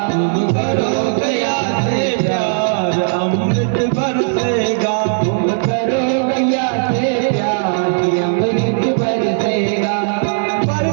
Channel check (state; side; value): silent; left; 69 dB below the other